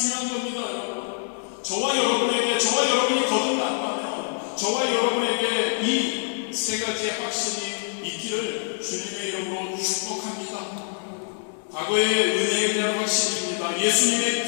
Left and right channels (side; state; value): right; silent; digital silence